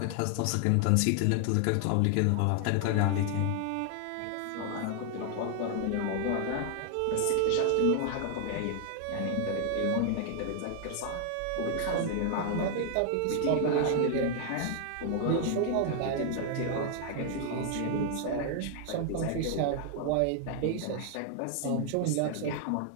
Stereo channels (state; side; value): different; both; correlation 0.00